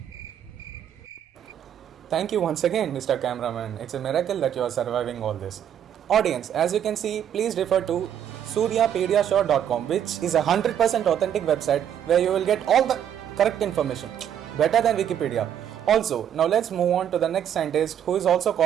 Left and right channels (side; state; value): left; quieter; 9.5 dB